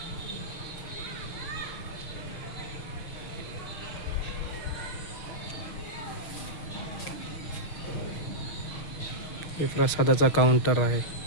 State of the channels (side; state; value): right; late; 6.5 ms